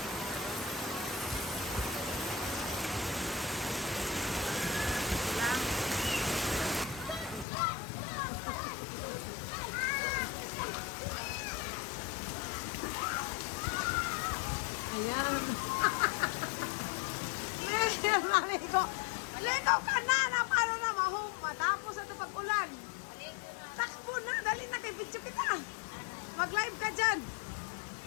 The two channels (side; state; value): right; drops out; at 7.5 s